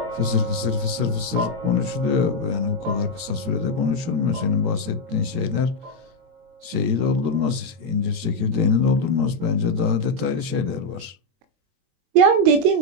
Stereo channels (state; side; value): late; left; 22 ms